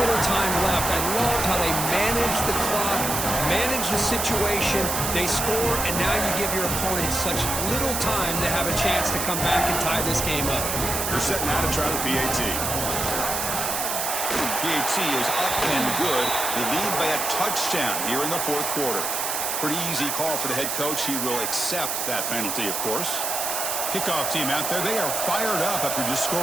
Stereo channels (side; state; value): right; noise; hiss, 1 dB below the sound